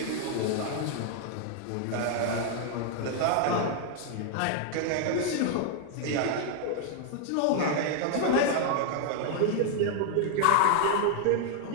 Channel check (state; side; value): different; both; correlation 0.00